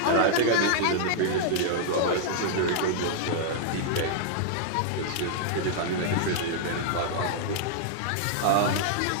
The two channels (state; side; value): different; both; correlation -0.01